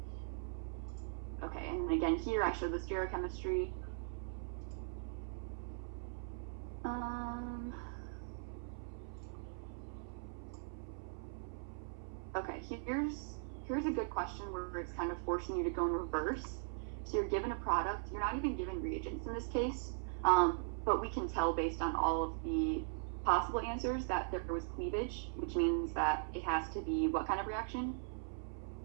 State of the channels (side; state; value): left; silent; 51 dB below the other